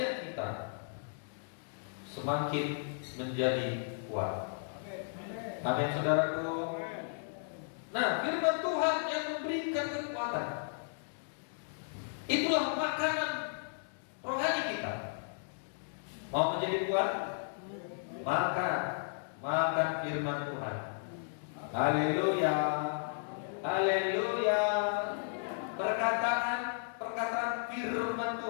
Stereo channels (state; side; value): silent; right; digital silence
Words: kita semakin menjadi kuat. Amin saudaraku. Nah, firman Tuhan yang memberikan kekuatan, itulah makanan rohani kita. Mau menjadi kuat? Makan firman Tuhan. Haleluya. Haleluya. Perkataan firman